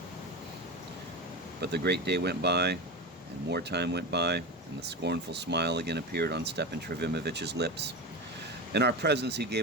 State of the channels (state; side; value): normal; both; correlation 0.22